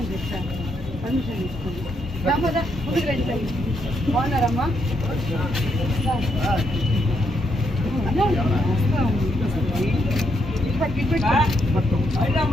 చెప్తాను పర్మిషన్ తీసుకోండి ముందుకు రండి బాగున్నారమ్మా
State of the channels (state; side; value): normal; both; correlation 0.78